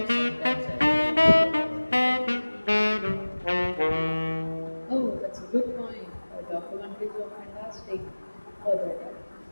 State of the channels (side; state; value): both; inverted; correlation -1.00